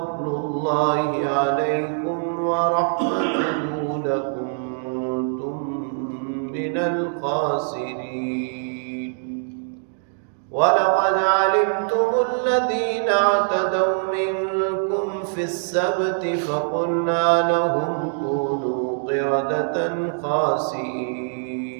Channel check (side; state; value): left; silent; digital silence